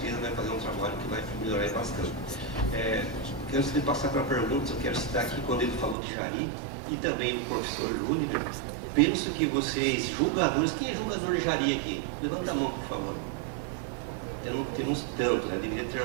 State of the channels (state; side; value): drops out; left; at 6.0 s